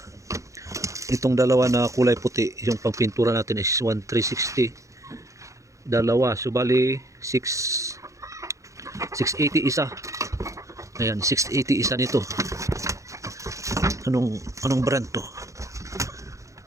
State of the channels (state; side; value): late; left; 0.15 ms